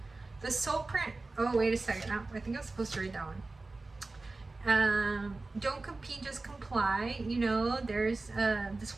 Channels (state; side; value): quieter; left; 3.4 dB